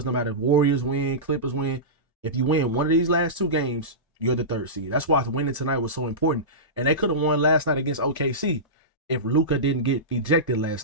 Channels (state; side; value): normal; both; correlation -0.18